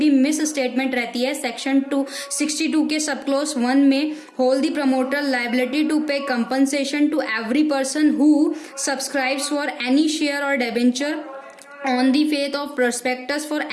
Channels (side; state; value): both; identical; correlation 1.00